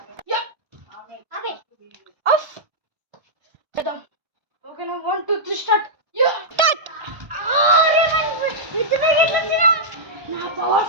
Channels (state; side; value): late; left; 1.1 ms